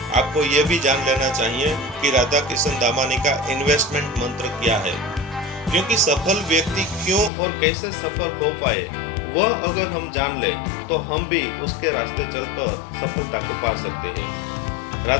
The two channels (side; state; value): right; drops out; at 7.3 s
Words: आपको ये भी जान लेना चाहिए कि राधाकिशन दामानी का इन्वेस्टमेंट मंत्र क्या है, क्योंकि सफल व्यक्ति क्यों और कैसे सफल हो पाए वह अगर हम जान ले तो हम भी उसके रास्ते चलकर सफलता को पा सकते हैं।